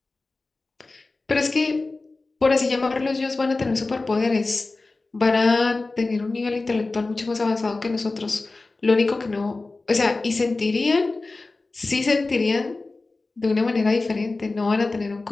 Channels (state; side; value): quieter; right; 3.4 dB